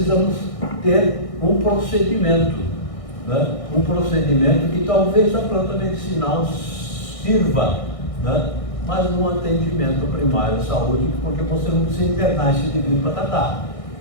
ter um procedimento. Né? Um procedimento que talvez a planta medicinal sirva, né? Mas no atendimento primário à saúde, porque você não precisa internar esse indivíduo para tratar.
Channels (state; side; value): late; right; 1.6 ms